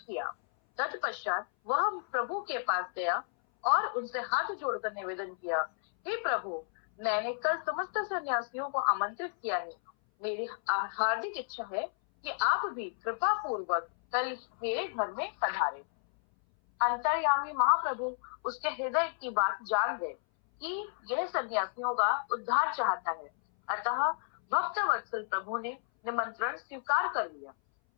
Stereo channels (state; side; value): silent; right; 56 dB below the other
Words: तत्पश्चात वह प्रभु के पास गया और उनसे हाथ जोड़कर निवेदन किया, हे प्रभु, मैंने कल समस्त सन्यासियों को आमंत्रित किया है। मेरी हार्दिक इच्छा है कि आप भी कृपा पूर्वक कल मेरे घर में पधारे। अंतर्यामी महाप्रभु उसके हृदय की बात जान गए कि यह सन्यासियों का उद्धार चाहता है। अतः भक्त वत्सल प्रभु ने निमंत्रण स्वीकार कर लिया।